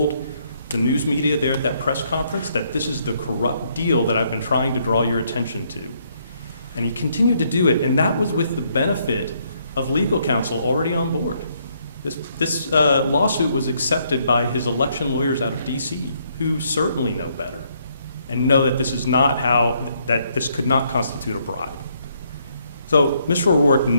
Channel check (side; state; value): both; inverted; correlation -0.71